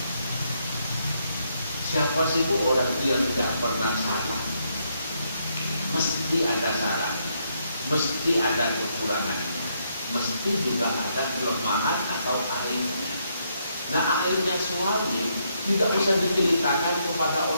Siapa sih bu orang yang tidak pernah salah? Mesti ada salah, mesti ada kekurangannya, mesti juga ada kelemahan atau aibnya. Nah, aibnya suami tidak usah diceritakan kepada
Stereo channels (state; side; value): inverted; both; correlation -0.75